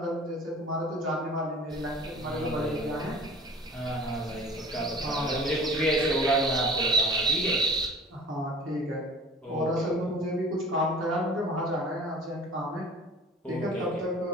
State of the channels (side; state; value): both; normal; correlation 0.44